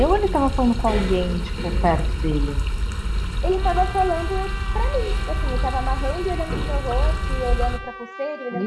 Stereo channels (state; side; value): identical; both; correlation 1.00